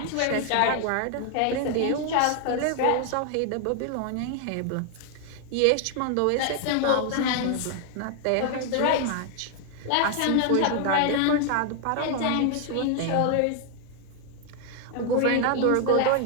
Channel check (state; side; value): different; both; correlation 0.00